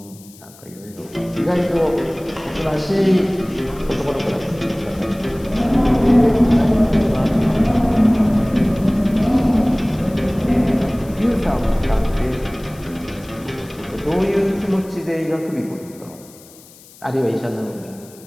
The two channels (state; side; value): noise; left; hiss, 23 dB below the sound